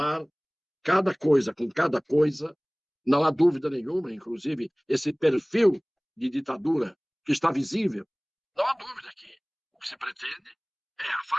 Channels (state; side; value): identical; both; correlation 1.00